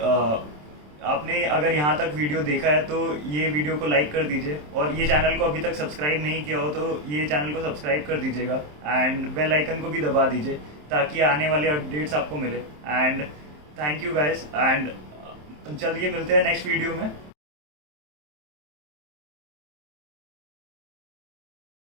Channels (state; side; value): late; left; 27 ms